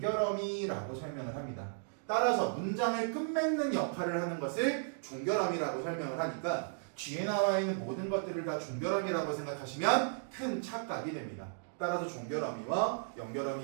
설명을 합니다. 따라서 문장을 끝맺는 역할을 하는 것을 종결어미라고 설명을 하니까 뒤에 나와 있는 모든 것들을 다 종결어미라고 생각하시면 큰 착각이 됩니다. 따라서 종결어미와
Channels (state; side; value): silent; left; digital silence